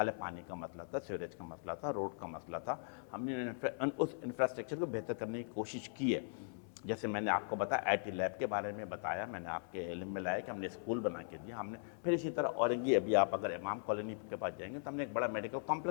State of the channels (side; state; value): right; silent; 51 dB below the other